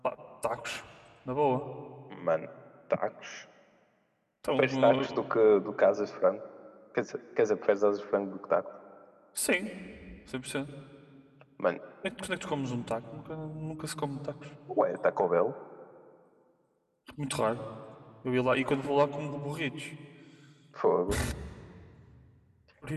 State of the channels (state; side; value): identical; both; correlation 1.00